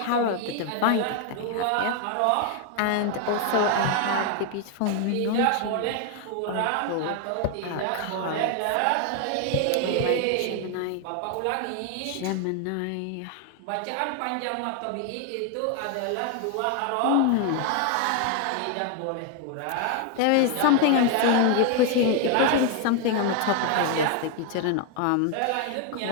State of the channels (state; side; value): different; both; correlation 0.01